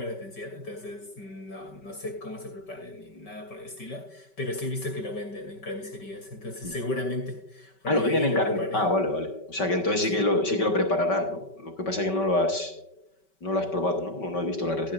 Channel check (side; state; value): right; late; 5.2 ms